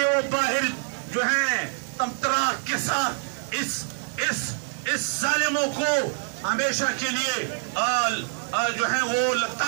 वो बाहर जो है तमतरा के साथ इस जालिमों को हमेशा के लिए जो है वो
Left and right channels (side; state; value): left; silent; 59 dB below the other